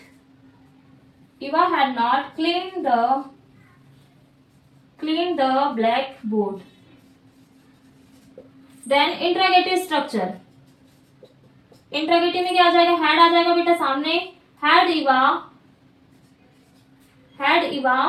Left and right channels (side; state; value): both; identical; correlation 1.00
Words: cleaned the blackboard. Then interrogative structure, interrogative में क्या आ जाएगा, हैड आ जाएगा बेटा सामने, हैड Eva